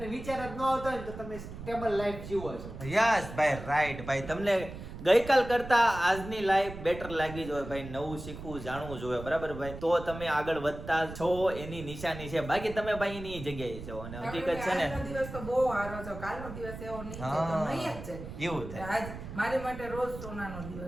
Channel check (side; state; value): right; noise; rumble, 11 dB below the sound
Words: વિચાર જ ન આવતા હોય ને તો તમે સ્ટેબલ લાઈફ જીવો છો. યસ ભાઈ, રાઈટ ભાઈ. તમને ગઈકાલ કરતા આજની લાઈફ બેટર લાગી જોઈએ ભાઈ, નવું શીખવું જાણવું જોઈએ, બરાબર ભાઈ? તો તમે આગળ વધતા છો એની નિશાની છે, બાકી તમે ભાઈ એની જગ્યાએ છો. અને હકીકત છે ને આજનો દિવસ તો બહુ સારો છે, કાલનો દિવસ એવો નહીં છે, તો નહીં જ છે. એવું થાય. આજ મારી માટે રોજ સોનાનો